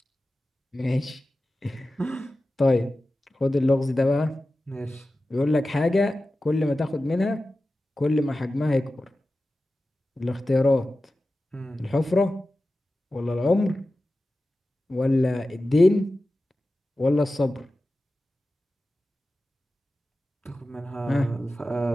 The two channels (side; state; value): both; normal; correlation 0.94